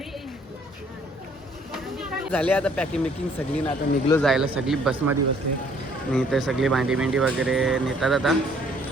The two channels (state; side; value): normal; both; correlation 0.61